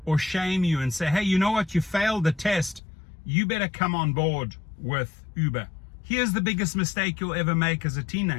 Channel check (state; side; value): drops out; right; at 2.8 s